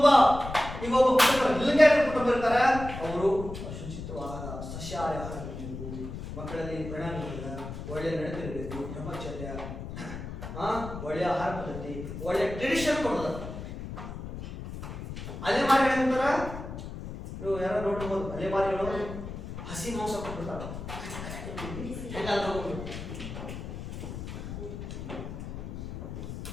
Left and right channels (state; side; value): noise; left; rumble, 9 dB below the sound